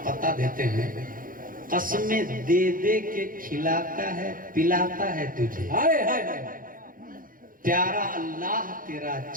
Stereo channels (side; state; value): left; late; 0.40 ms